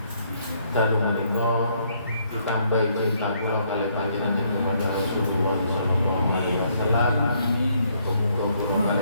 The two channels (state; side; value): inverted; both; correlation -0.70